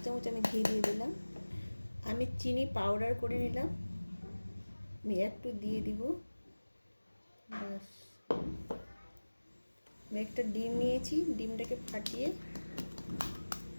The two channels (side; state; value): both; inverted; correlation -1.00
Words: চামচ আমি ঘি দিয়ে দিলাম। আমি চিনি পাউডার করে নিলাম, আমি একটু দিয়ে দিব। ব্যাস। আমি একটা ডিম নিয়েছি, ডিমটাকে ফাটিয়ে